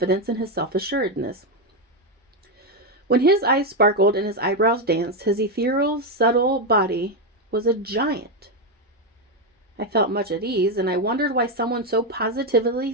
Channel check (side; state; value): both; normal; correlation 0.06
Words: and his self-assuredness. When his eyes sparkled and his eyebrows danced, his ethereal, subtle body was a giant. I felt much at ease, and I wondered why someone so